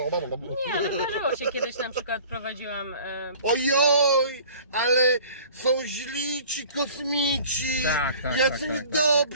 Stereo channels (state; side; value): inverted; both; correlation -0.47